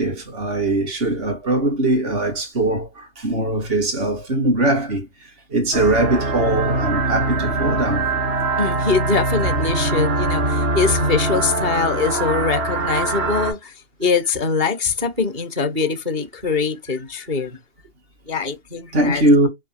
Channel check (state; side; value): late; left; 2.8 ms